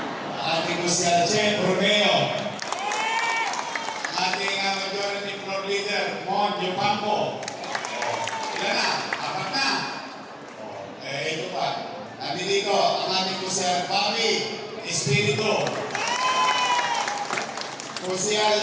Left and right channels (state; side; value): identical; both; correlation 1.00